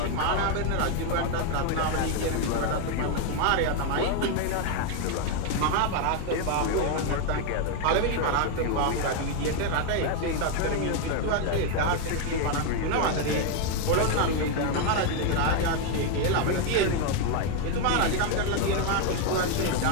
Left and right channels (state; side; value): different; both; correlation 0.01